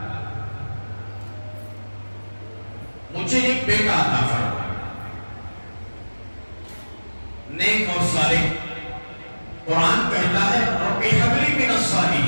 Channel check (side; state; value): both; inverted; correlation -1.00